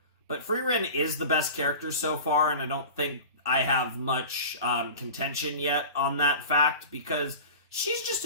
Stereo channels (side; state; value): both; inverted; correlation -0.36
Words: but Frieren is the best character so far, and I don't think I have much contention yet on that fact because she's just